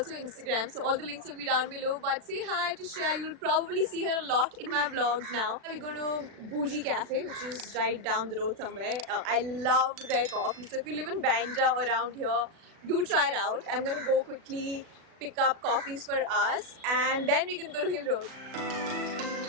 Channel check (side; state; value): left; late; 36 ms